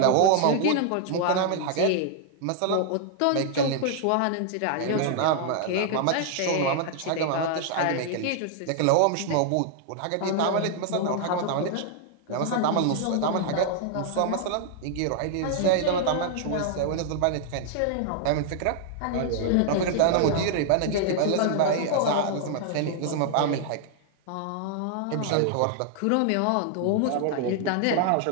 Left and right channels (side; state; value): both; different; correlation 0.00